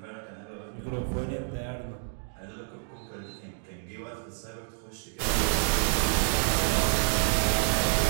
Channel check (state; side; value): silent; left; digital silence